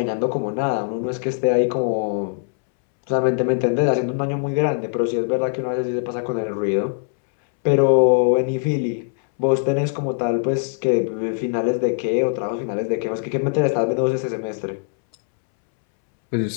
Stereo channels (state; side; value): silent; right; 65 dB below the other